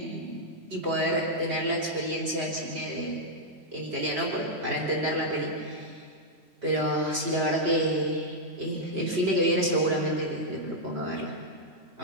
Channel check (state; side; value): late; left; 3.1 ms